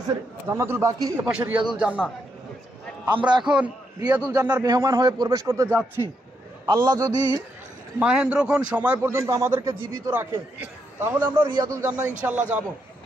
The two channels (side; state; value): both; normal; correlation 0.80